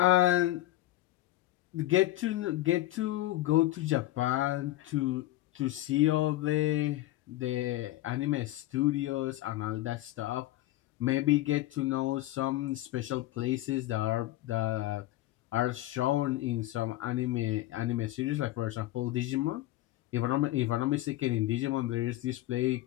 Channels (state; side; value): quieter; right; 16.2 dB